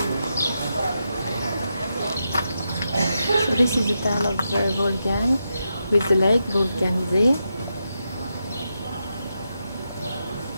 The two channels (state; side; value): inverted; both; correlation -0.86